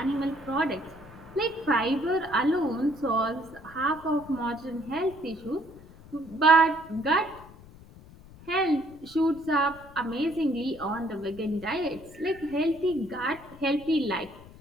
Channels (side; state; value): left; noise; rumble, 20 dB below the sound